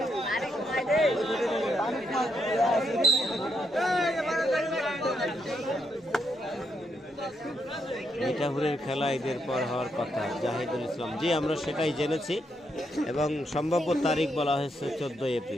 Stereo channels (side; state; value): both; normal; correlation 0.78